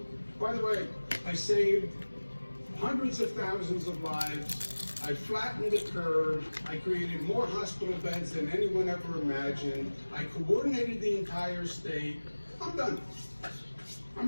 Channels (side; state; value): both; inverted; correlation -1.00